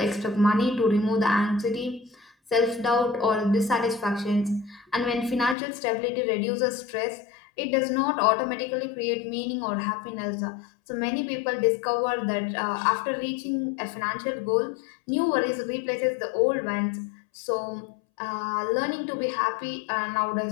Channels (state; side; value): drops out; right; at 5.6 s